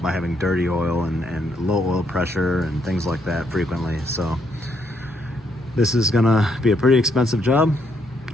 having dirty oil and low oil pressure and things like that frequently. So this is gonna be a pretty expensive job.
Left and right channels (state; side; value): normal; both; correlation 0.74